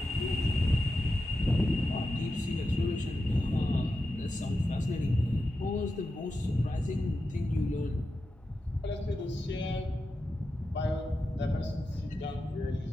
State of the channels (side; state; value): both; normal; correlation 0.90